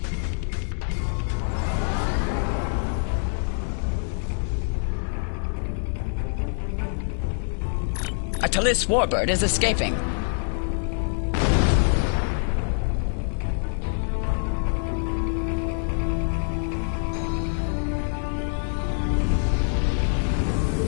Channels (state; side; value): silent; right; 58 dB below the other